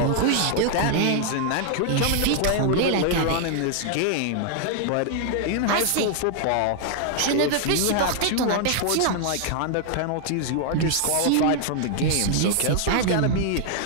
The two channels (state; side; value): different; both; correlation 0.00